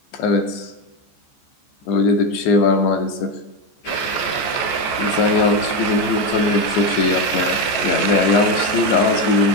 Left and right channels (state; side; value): late; right; 14 ms